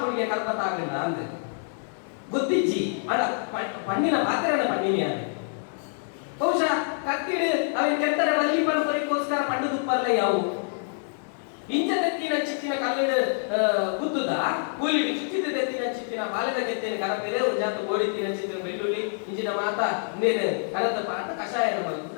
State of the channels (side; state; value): right; silent; digital silence